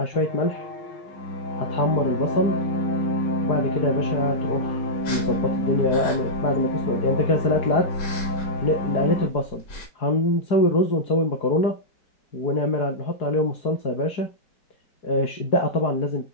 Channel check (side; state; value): right; late; 4.8 ms